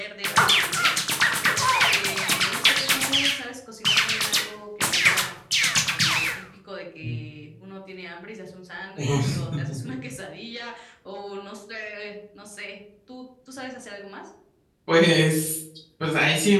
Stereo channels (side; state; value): both; identical; correlation 1.00